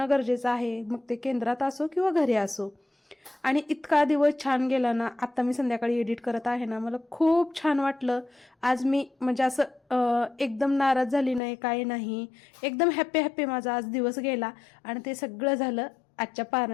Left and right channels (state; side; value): drops out; right; at 11.4 s